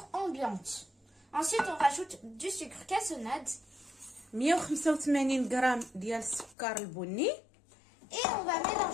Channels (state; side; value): drops out; right; at 6.6 s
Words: ambiante. Ensuite, on rajoute du sucre cassonade. 185 غرام ديال السكر البني. Et on va